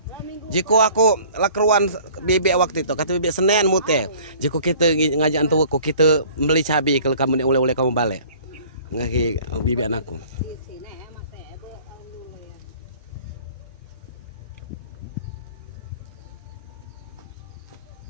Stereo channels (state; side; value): inverted; both; correlation -0.50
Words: Jika aku lakeruan bebek waktu itu kata bebek Senin mute. Jika kita ngajak antu aku kita beli cabai kalau kamu oleh kamu balik. Ngaki bebek anakku.